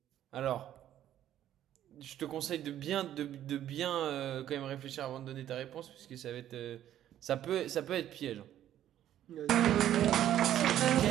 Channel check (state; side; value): quieter; left; 11.7 dB